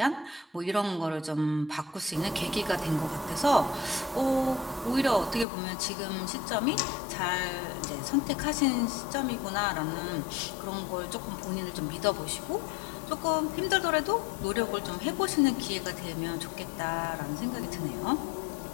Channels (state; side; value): drops out; right; at 5.5 s